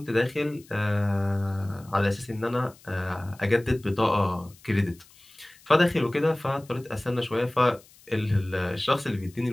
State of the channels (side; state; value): left; noise; hiss, 26 dB below the sound